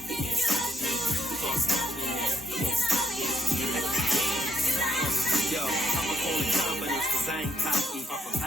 you can't stop me. You can't stop me now, you can't stop me. You can't stop me. Yo, I'ma call it confidence cause I ain't cocky.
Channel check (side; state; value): both; normal; correlation 0.76